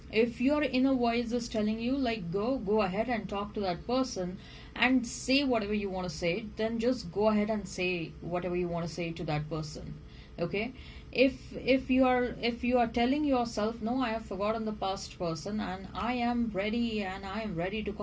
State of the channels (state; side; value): identical; both; correlation 1.00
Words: if your inner voice is telling you like, go ahead and talk to that person and say whatever you want to say, then just go ahead and say whatever you want to say to that person. Okay, if you are telling yourself, no, I have forgotten the past person, and I am ready to